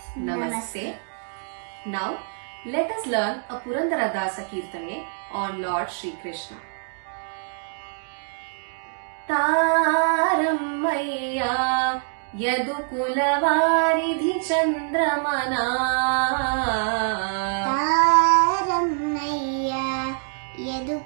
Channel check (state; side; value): silent; left; digital silence